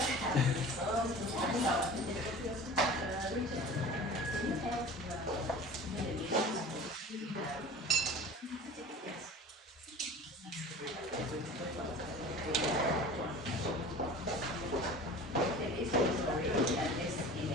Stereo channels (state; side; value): normal; both; correlation 0.39